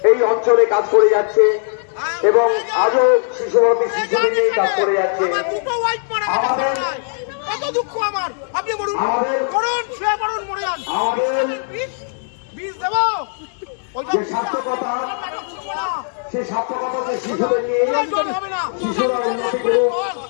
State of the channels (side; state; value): right; silent; digital silence